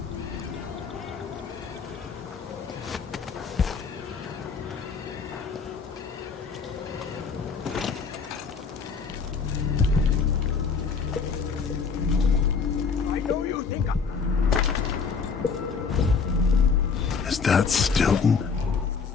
Is that Stilton?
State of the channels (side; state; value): right; quieter; 5.4 dB